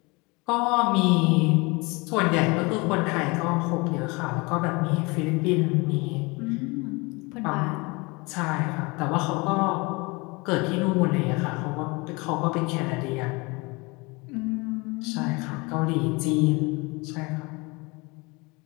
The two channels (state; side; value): quieter; right; 26.5 dB